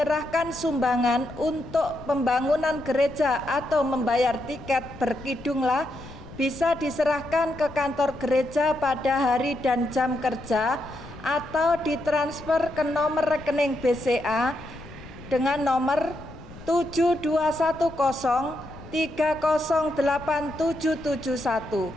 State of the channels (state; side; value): noise; left; rumble, 17 dB below the sound